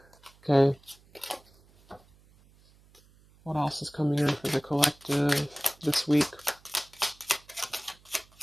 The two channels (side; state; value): right; noise; hum, 29 dB below the sound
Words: Okay. What else is coming in for the collective this week?